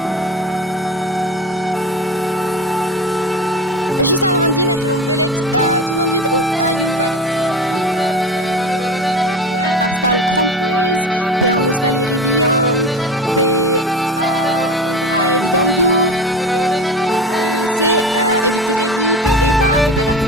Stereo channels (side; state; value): both; normal; correlation 0.31